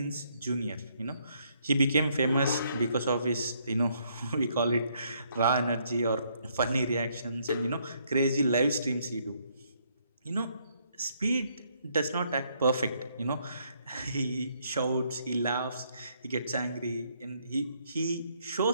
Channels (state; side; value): inverted; both; correlation -0.71